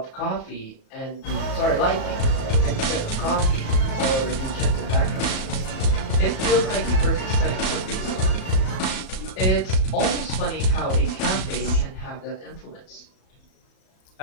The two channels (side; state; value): right; late; 37 ms